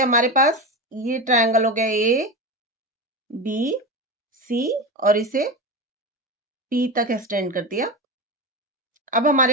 हमारे पास ये ट्रायंगल हो गया ए बी सी और इसे पी तक एक्सटेंड कर दिया। अब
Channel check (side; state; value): both; normal; correlation 0.22